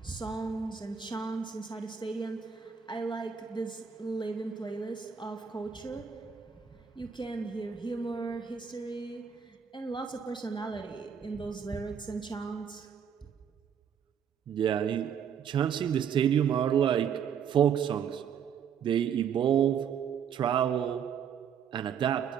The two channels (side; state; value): left; quieter; 7.7 dB